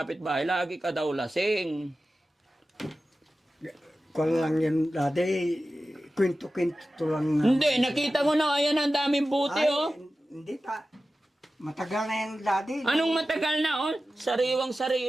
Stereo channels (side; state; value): both; normal; correlation 0.94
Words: lagi ka daw lasing. Kung lang yan dati, kwento-kwento lang. Hindi, nakita ko na, ayan ang daming buti, Ay, oh. Hindi pa. Matagal na yan dati. Anong matagal na, oh?